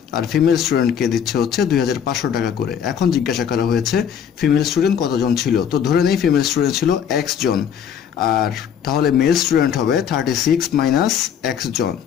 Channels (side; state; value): right; quieter; 8.3 dB